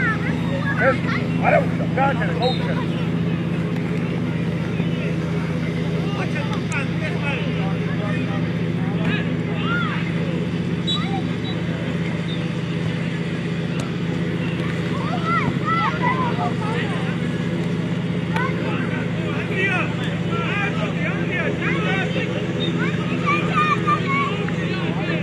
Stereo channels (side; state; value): both; identical; correlation 1.00